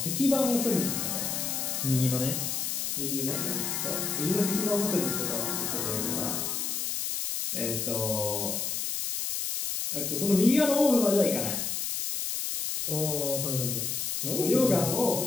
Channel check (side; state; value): left; noise; hiss, 1 dB below the sound